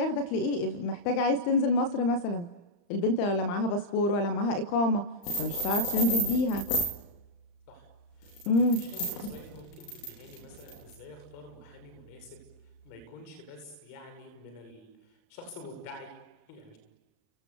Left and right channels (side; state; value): right; late; 35 ms